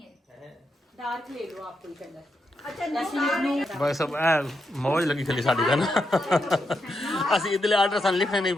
डार्क ले लो आप कोई कलर। भाई सब मौज लगी खली साड़ी का ना। ਅਸੀਂ ਇਦਲੇ ਆਰਡਰ ਸਾਨੂੰ ਲਿਖਣੇ ਨਹੀਂ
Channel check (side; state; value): both; normal; correlation 0.83